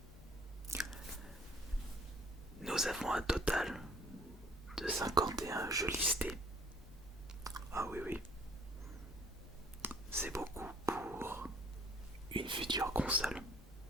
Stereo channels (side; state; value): both; normal; correlation 0.56